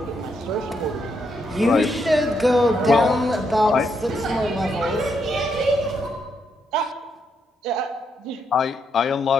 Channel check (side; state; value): both; normal; correlation 0.78